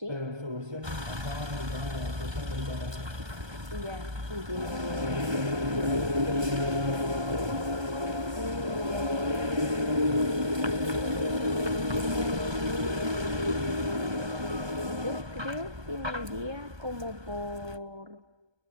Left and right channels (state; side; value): late; left; 1.2 ms